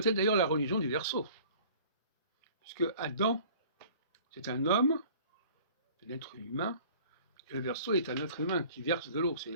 être d'ailleurs la religion du Verseau, puisque Adam, c'est un homme, un être humain, et le Verseau est un être humain qui verse de l'eau. C'est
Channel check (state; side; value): inverted; both; correlation -0.48